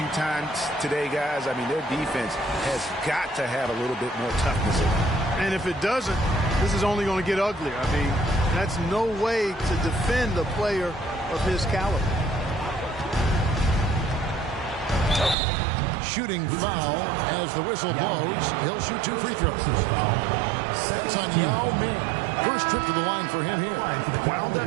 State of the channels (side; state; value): left; drops out; at 15.4 s